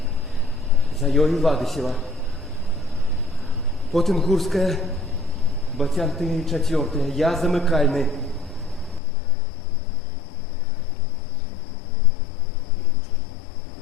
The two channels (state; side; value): drops out; right; at 9.0 s